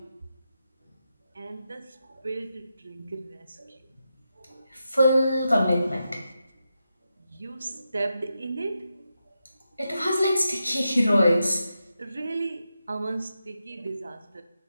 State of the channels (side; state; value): both; inverted; correlation -0.88